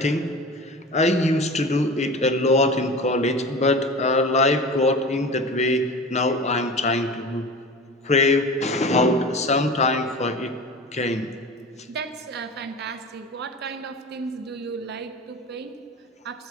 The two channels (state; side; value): normal; both; correlation 0.34